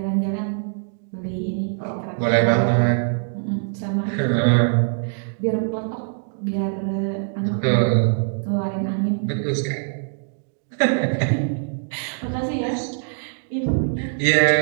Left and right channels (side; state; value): left; silent; digital silence